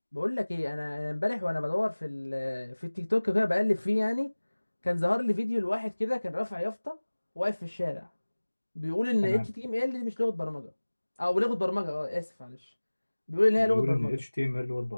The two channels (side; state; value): both; inverted; correlation -1.00